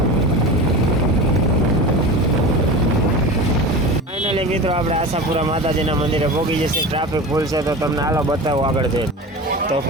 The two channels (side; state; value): both; normal; correlation 0.30